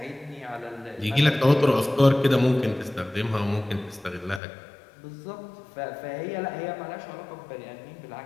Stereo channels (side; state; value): right; drops out; at 4.4 s